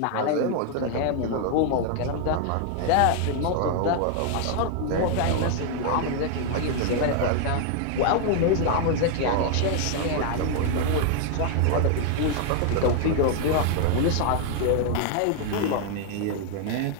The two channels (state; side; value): different; both; correlation 0.00